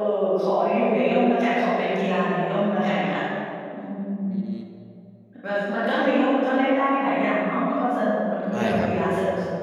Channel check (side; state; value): both; identical; correlation 1.00